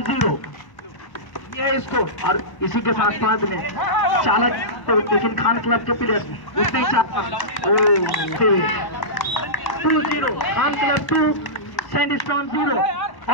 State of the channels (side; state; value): right; late; 1.0 ms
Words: 0 ये इसको और इसी के साथ साथ ने चालक तो लेकिन खान क्लब के प्लेयर उतने ही 2-0 खान क्लब 2 सैंडस्टॉर्म 0